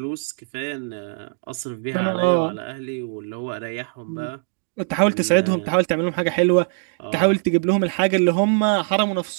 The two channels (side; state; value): left; silent; digital silence